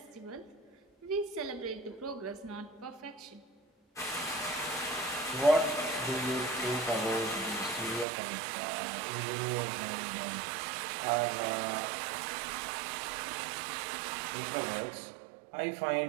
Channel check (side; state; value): left; drops out; at 8.1 s